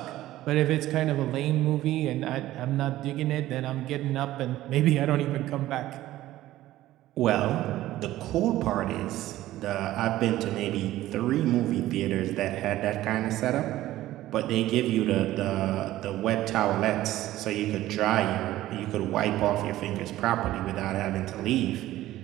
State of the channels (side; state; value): left; quieter; 15.1 dB